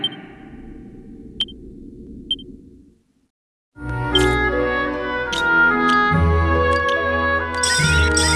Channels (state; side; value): identical; both; correlation 1.00